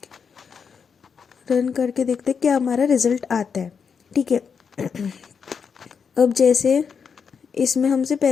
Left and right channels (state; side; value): quieter; right; 6.3 dB